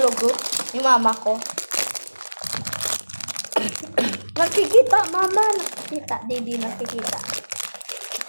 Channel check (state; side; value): inverted; both; correlation -1.00